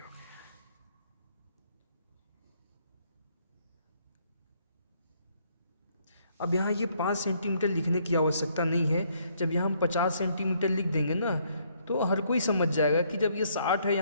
अब यहाँ ये 5 सेंटीमीटर लिखने की आवश्यकता नहीं है। जब यहाँ हम 50 सेंटीमीटर लिख देंगे ना, तो हर कोई समझ जाएगा कि जब ये 60 है,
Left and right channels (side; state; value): both; inverted; correlation -0.68